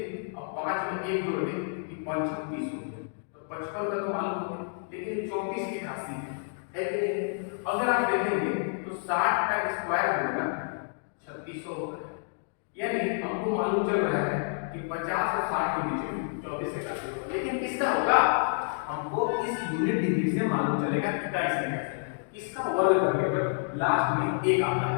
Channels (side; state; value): right; silent; digital silence